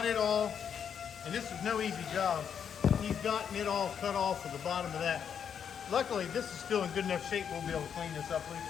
it all, and this is no easy job. He's gotten it all cut off at the bottom of that. Luckily, this is still in good enough shape. We'll be able to clean this up,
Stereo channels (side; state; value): right; quieter; 7.8 dB